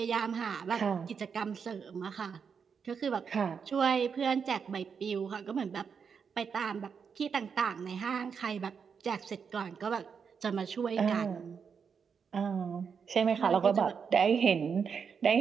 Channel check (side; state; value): left; quieter; 6.4 dB